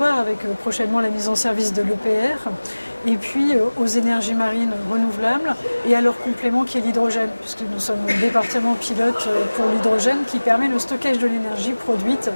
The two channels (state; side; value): inverted; both; correlation -1.00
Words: avec prochainement la mise en service de l'EPR, et puis aux énergies marines renouvelables et à leur complément qui est l'hydrogène, puisque nous sommes le département pilote pour l'hydrogène qui permet le stockage de l'énergie produite